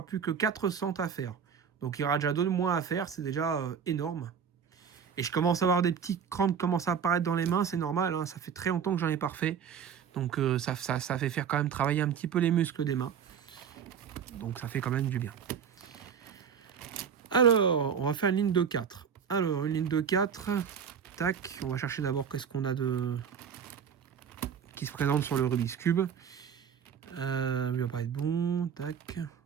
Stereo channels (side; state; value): left; quieter; 7.4 dB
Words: plus que 4 centres à faire. Donc il y aura déjà 2 de moins à faire. C'est déjà énorme. Et je commence à avoir des petits crampes qui commencent à apparaître dans les mains. C'est normal, hein, ça fait très longtemps que j'en ai pas refait. Donc ça fait faire quand même travailler un petit peu les muscles des mains. Donc ça fait quand même du bien. Alors, on va faire une ligne de 4. Alors, une ligne de 4. Tac, on va chercher d'abord qu'est-ce qu'on a de... qui se présente sur le Rubik's Cube. Il va pas être bon. Tac.